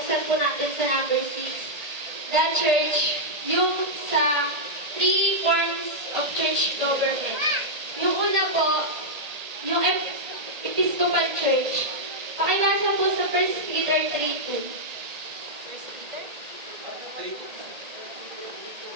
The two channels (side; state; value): left; late; 1.8 ms